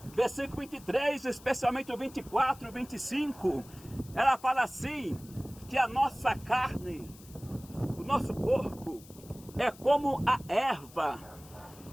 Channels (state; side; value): noise; left; hiss, 22 dB below the sound